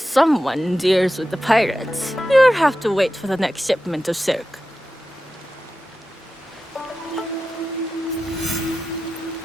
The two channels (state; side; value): normal; both; correlation 0.93